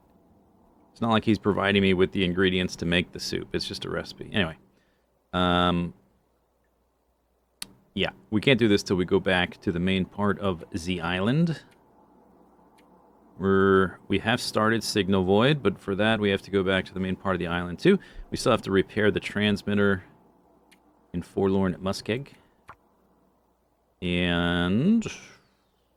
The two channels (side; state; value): both; identical; correlation 1.00